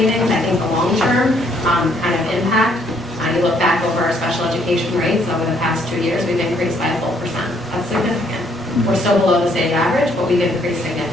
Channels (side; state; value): both; normal; correlation 0.67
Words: I think the long-term kind of impact, you look back over our special education rates over the past 2 years, we've increased by a full percent. That's significant. We're still below the state average, but we've increased